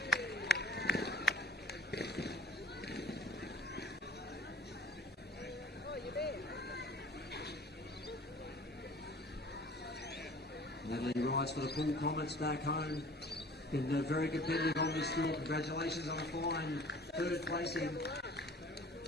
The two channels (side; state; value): both; normal; correlation 0.46